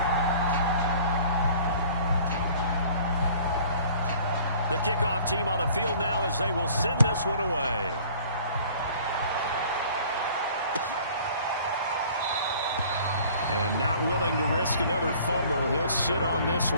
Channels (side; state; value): both; inverted; correlation -0.51